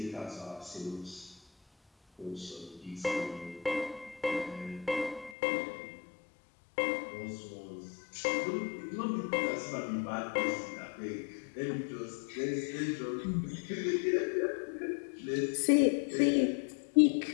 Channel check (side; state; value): right; drops out; at 5.4 s